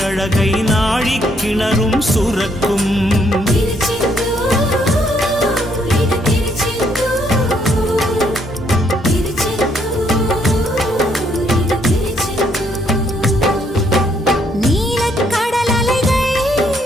அழகை நாழி கிணறும் சுரக்கும். நீலக்கடல் அலைகள்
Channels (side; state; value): both; normal; correlation 0.71